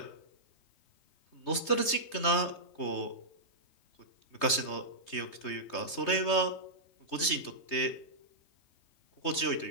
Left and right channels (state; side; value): late; right; 3.2 ms